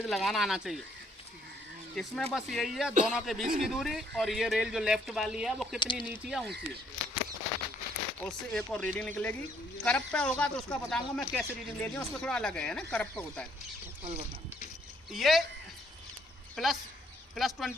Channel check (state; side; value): normal; both; correlation 0.67